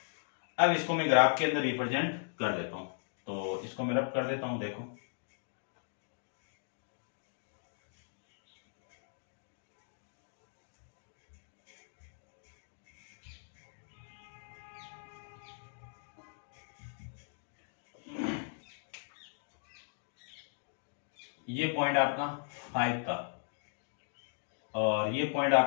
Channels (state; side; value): silent; right; digital silence